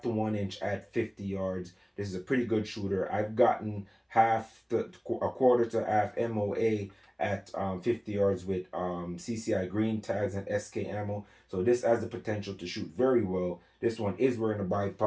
to 1 inch at 50 yards. This is a pretty good shooter. I've gotten a quarter to half MOA at 50 yards with CCI green tags and SK ammo. So this has the potential to shoot very well. This one is wearing a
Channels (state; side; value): identical; both; correlation 1.00